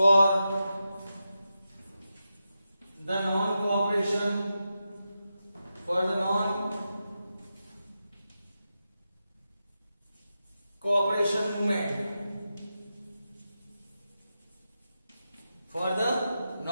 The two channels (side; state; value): both; inverted; correlation -0.89